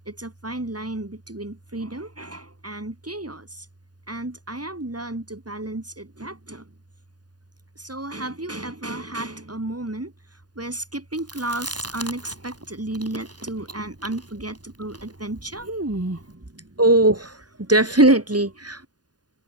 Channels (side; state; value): left; late; 0.69 ms